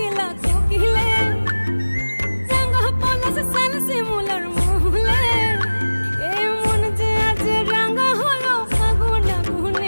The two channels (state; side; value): inverted; both; correlation -1.00